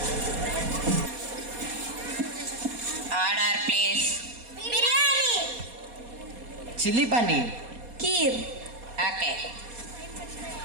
Order please. Biryani. Chilli paneer. Kheer. Okay.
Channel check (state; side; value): late; left; 4.2 ms